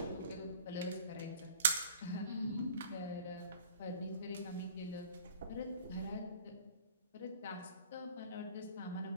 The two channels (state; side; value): inverted; both; correlation -0.49